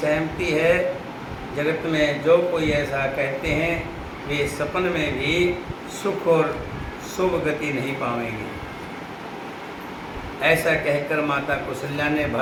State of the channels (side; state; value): both; identical; correlation 1.00